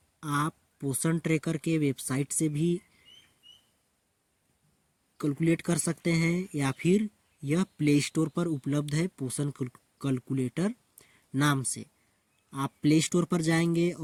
आप पोषण ट्रैकर के वेबसाइट से भी कैलकुलेट कर सकते हैं या फिर यह प्ले स्टोर पर उपलब्ध है पोषण कैलकुलेटर नाम से। आप प्ले स्टोर पर जाएंगे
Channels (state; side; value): identical; both; correlation 1.00